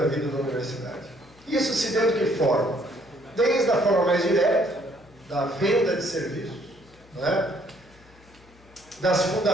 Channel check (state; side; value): noise; left; hum, 26 dB below the sound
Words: vida da universidade. Isso se deu de que forma? Desde a forma mais direta, da venda de serviços, né? Das